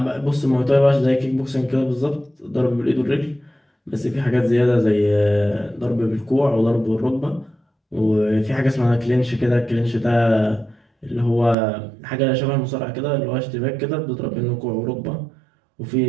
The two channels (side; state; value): left; drops out; at 11.6 s